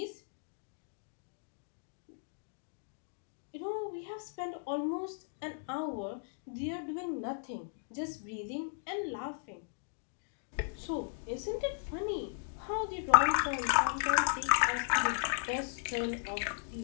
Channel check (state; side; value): silent; right; digital silence